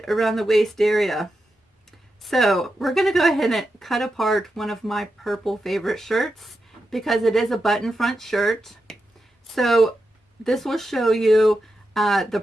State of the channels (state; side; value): normal; both; correlation 0.88